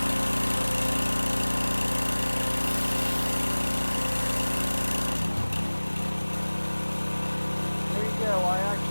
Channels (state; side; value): inverted; both; correlation -1.00